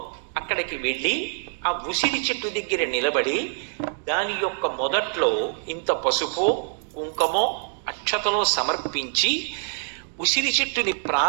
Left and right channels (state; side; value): silent; left; digital silence